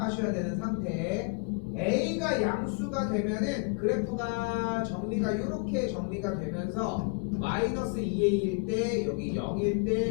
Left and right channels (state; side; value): quieter; right; 31.2 dB